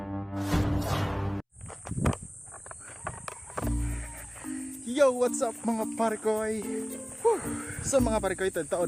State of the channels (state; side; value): identical; both; correlation 1.00